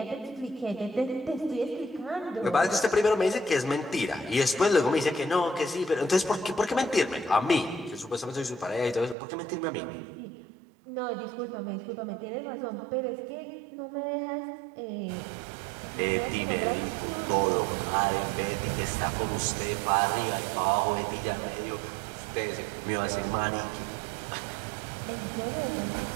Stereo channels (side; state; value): left; drops out; at 9.2 s